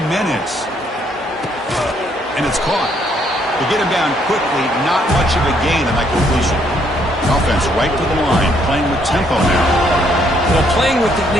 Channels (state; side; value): normal; both; correlation 0.69